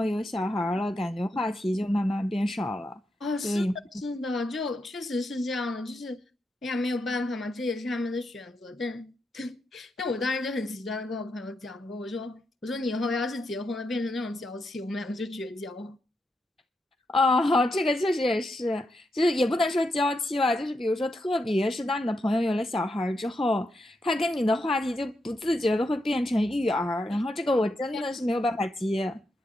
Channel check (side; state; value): both; normal; correlation 0.84